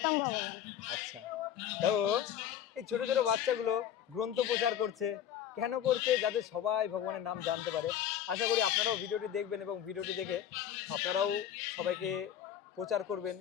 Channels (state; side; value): quieter; right; 10.0 dB